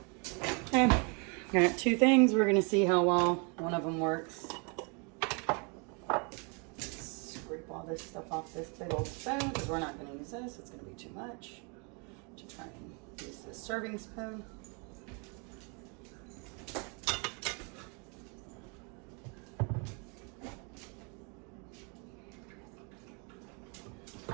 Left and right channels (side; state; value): left; quieter; 34.3 dB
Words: Okay, got two things. We're going to see how well one of them works. Scrape all this stuff off this big old spoon because we're not going to use this. It's going to be too much. To try and use this serving spoon.